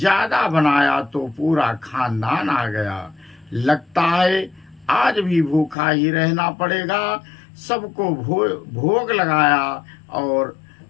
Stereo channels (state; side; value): drops out; right; at 5.8 s